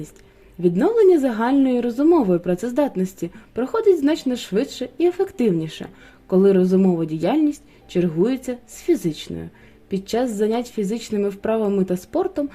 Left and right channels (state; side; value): identical; both; correlation 1.00